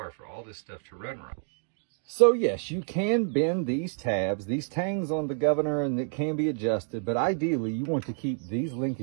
for all this stuff to run right. So yes, you can bend these tabs, these tangs on the governor, and it can be adjusted, but ideally you want to keep these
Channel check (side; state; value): left; silent; 58 dB below the other